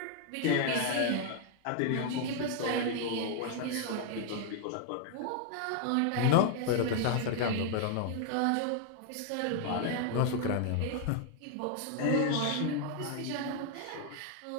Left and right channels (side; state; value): both; different; correlation 0.00